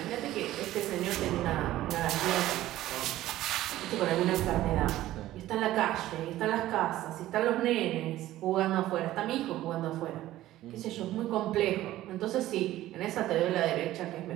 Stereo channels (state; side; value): quieter; left; 14.9 dB